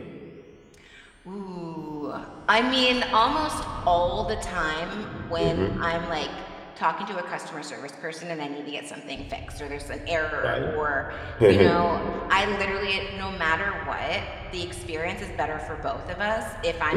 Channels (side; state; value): both; identical; correlation 1.00